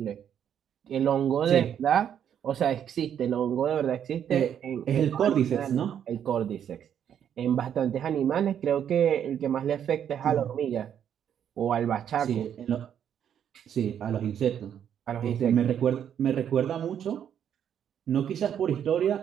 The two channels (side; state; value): left; quieter; 9.1 dB